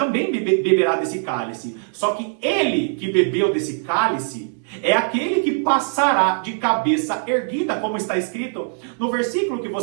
beberá desse cálice. Só que ele que bebeu desse cálice é aquele que passará de cabeça erguida, como está escrito no versículo que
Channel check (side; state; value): left; silent; 65 dB below the other